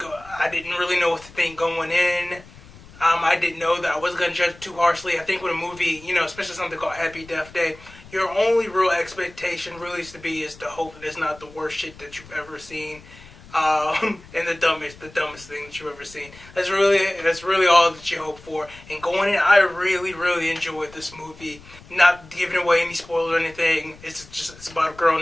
I didn't really know what to think going in. I didn't know that I wasn't going to judge too harshly. I think with a movie, especially something called Happy Death Day, your only real expectation really is to hope that it's not the worst shit that you've ever seen, and the dumbest thing that you've ever seen. That's really all that you hope for. And going in, I really enjoyed this movie. Not giving away any spoilers or anything. It's about a girl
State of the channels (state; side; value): noise; left; rumble, 21 dB below the sound